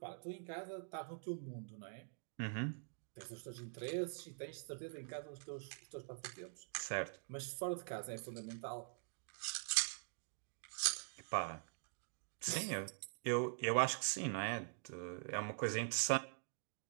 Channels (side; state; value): left; silent; digital silence